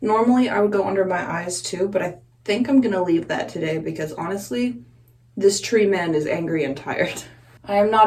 Normally I would go under my eyes too, but I think I'm gonna leave that today because honestly, this tree man is angry and tired. I am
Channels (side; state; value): both; identical; correlation 1.00